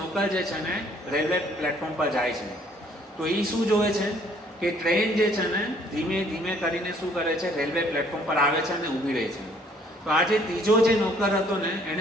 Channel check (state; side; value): normal; both; correlation 0.61